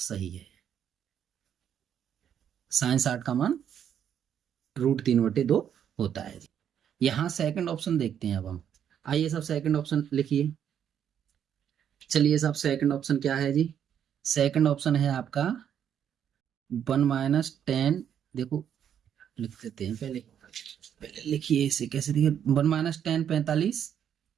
है, sin 60 का मान √3/2 होता है। यहां सेकंड ऑप्शन देखते हैं अब हम, आइए साहब सेकंड ऑप्शन लिखिए। चलिए साहब सेकंड ऑप्शन क्या है जी, सेकंड ऑप्शन है आपका 1 - 10, देखो लिख देते हैं, पहले लिखिए इसे कैसे दिखे, 1 - 10 45,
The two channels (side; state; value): left; quieter; 9.1 dB